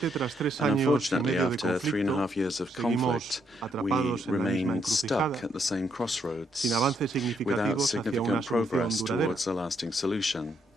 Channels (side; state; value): both; normal; correlation 0.75